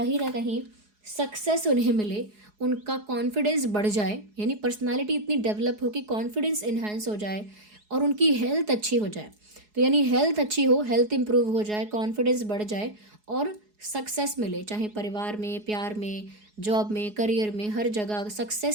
ना कहीं सक्सेस उन्हें मिले, उनका कॉन्फिडेंस बढ़ जाए, यानी पर्सनालिटी इतनी डेवलप हो कि कॉन्फिडेंस इन्हांस हो जाए और उनकी हेल्थ अच्छी हो जाए, तो यानी हेल्थ अच्छी हो, हेल्थ इंप्रूव हो जाए, कॉन्फिडेंस बढ़ जाए और सक्सेस मिले, चाहे परिवार में, प्यार में, जॉब में, करियर में, हर जगह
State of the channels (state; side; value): late; left; 4.8 ms